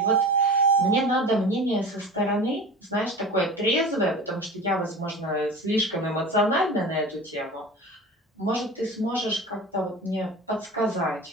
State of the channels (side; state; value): both; normal; correlation 0.34